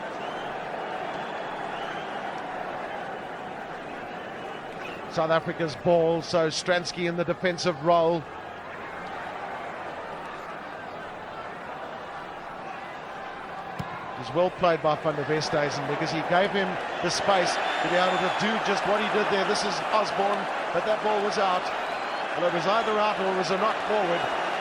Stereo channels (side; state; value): both; identical; correlation 1.00